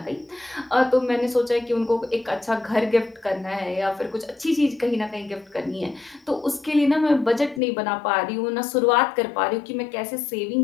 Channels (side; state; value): right; drops out; at 7.6 s